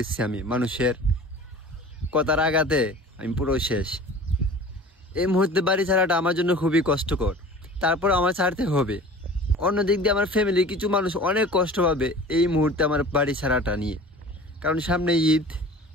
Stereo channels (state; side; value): normal; both; correlation 0.41